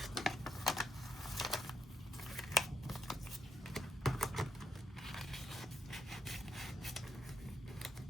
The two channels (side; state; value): both; normal; correlation 0.77